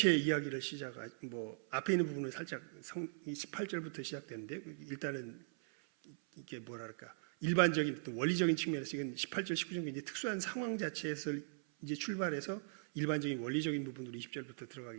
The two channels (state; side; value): silent; left; 51 dB below the other